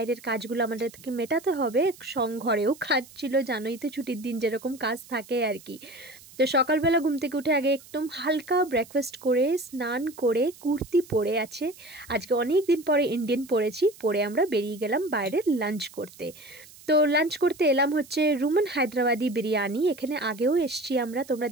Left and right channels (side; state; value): right; noise; hiss, 21 dB below the sound